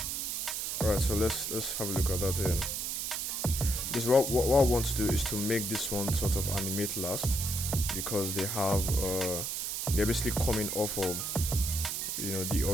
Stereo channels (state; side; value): noise; right; hiss, 2 dB below the sound